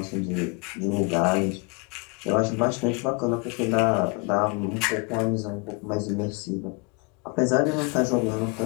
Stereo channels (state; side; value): quieter; right; 31.6 dB